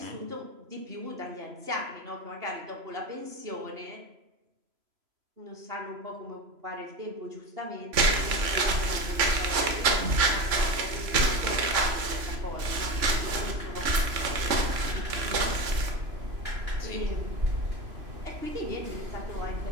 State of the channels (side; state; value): left; late; 3.0 ms